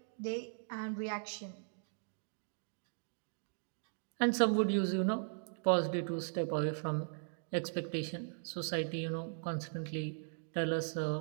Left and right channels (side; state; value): left; silent; digital silence